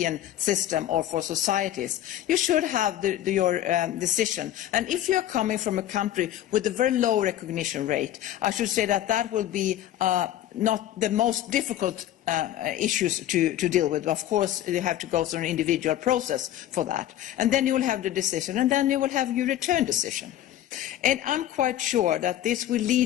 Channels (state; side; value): quieter; right; 12.4 dB